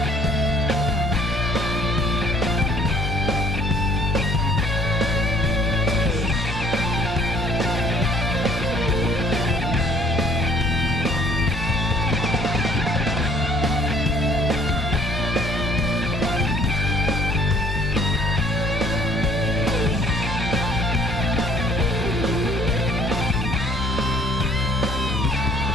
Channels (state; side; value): normal; both; correlation 0.59